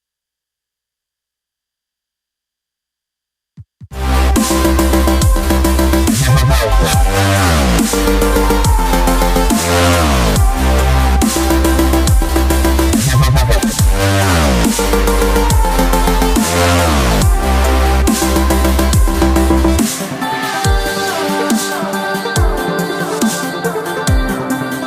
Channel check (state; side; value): identical; both; correlation 1.00